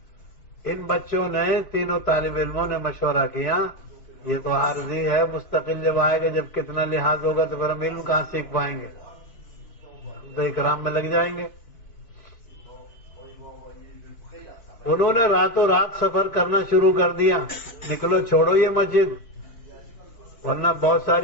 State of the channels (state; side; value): late; right; 4.6 ms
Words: ان بچوں نے، تینوں طالب علموں نے مشورہ کیا یہ تو عارضی ہے، مستقل جب آئے گا، جب کتنا لحاظ ہوگا تو پھر ہم علم کہاں سیکھ پائیں گے، تو اکرام میں لگ جائیں گے۔ انہوں نے راتوں رات سفر کرنا شروع کر دیا، نکلو چھوڑو یہ مسجد ورنہ بہت